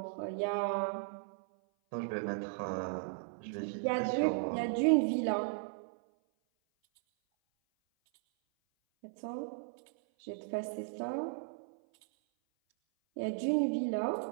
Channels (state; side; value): silent; left; 54 dB below the other